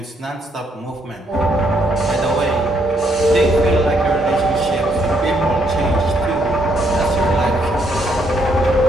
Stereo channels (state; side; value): normal; both; correlation 0.72